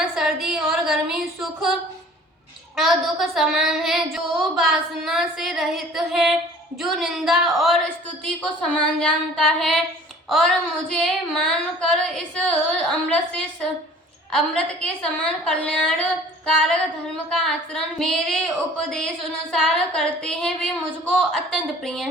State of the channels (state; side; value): normal; both; correlation 0.49